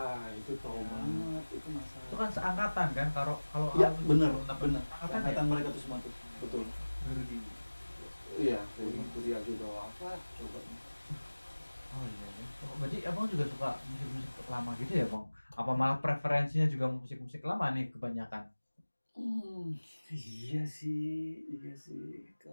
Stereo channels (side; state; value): both; inverted; correlation -1.00